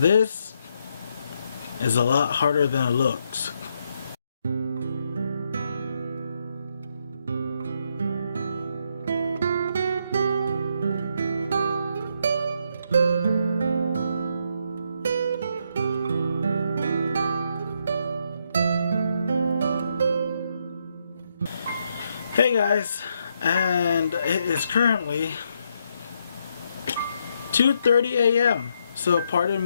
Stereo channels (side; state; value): both; inverted; correlation -0.77